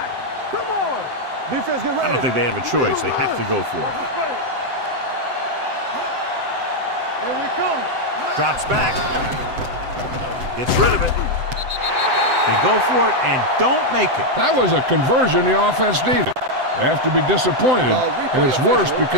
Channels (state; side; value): late; left; 7.8 ms